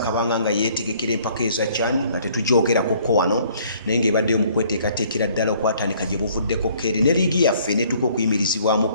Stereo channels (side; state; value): both; inverted; correlation -0.60